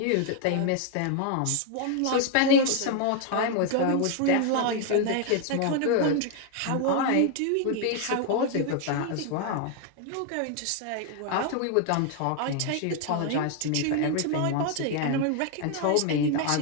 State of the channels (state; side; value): different; both; correlation 0.00